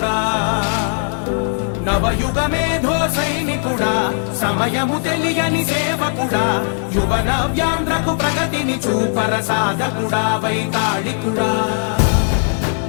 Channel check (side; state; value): right; silent; 67 dB below the other